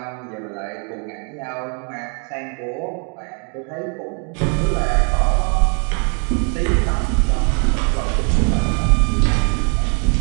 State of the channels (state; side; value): quieter; left; 39.0 dB